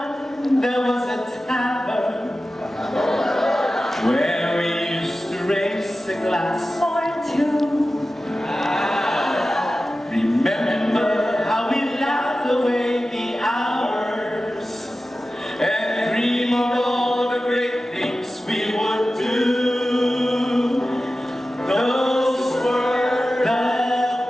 there was a tavern where we used to raise a glass. Or two. Remember how we laughed away the hours and dream of all the great things we would do. Those were the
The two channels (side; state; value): both; normal; correlation 0.94